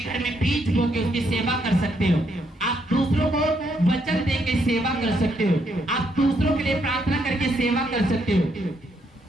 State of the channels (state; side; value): normal; both; correlation 0.75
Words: में बीज बो के उसकी सेवा कर सकते हो। आप दूसरों को वचन दे के सेवा कर सकते हो। आप दूसरों के लिए प्रार्थना करके सेवा कर सकते हो।